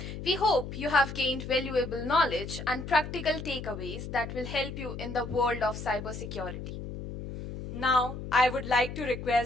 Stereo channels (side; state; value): left; noise; hum, 8 dB below the sound